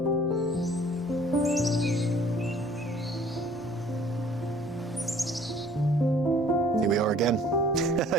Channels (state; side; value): normal; both; correlation 0.55